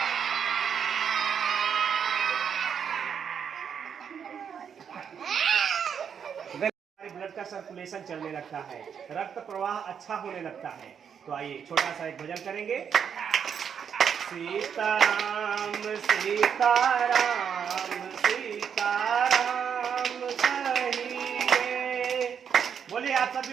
का सर्कुलेशन चलने लगता है, रक्त प्रवाह अच्छा होने लगता है। तो आइए छोटा सा एक भजन करेंगे। सीताराम सीताराम सीताराम कहिए, बोलिए आप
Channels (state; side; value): quieter; left; 7.5 dB